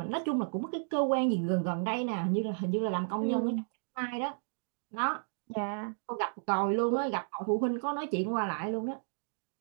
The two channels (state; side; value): silent; left; digital silence